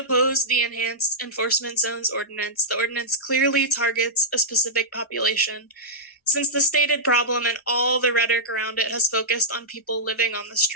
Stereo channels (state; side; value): normal; both; correlation -0.09